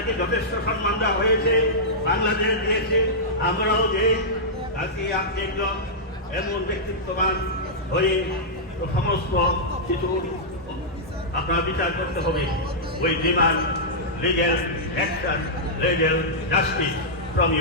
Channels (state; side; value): normal; both; correlation -0.11